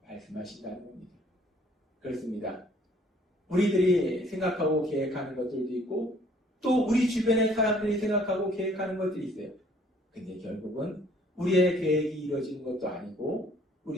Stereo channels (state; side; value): normal; both; correlation 0.59